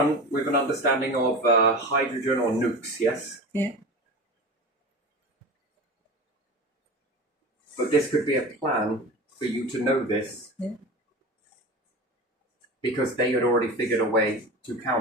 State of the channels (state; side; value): normal; both; correlation 0.30